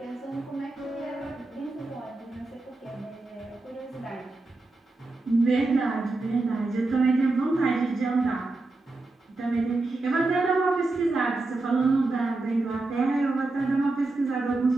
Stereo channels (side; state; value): left; quieter; 3.1 dB